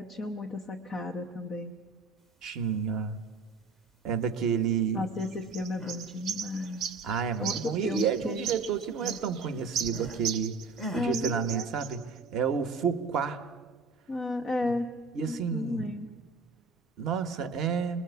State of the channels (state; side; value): quieter; left; 4.0 dB